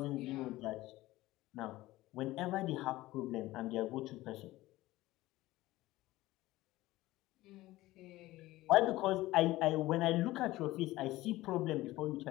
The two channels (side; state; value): right; quieter; 17.6 dB